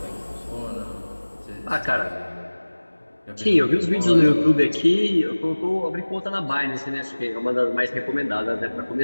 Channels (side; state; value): both; inverted; correlation -1.00